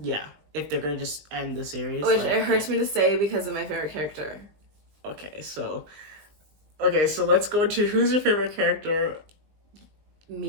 Yeah, if they're going to just end the series. Which it hurts me to say because of my favorite character. Okay, so let's go to who's your favorite character?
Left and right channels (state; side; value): late; left; 19 ms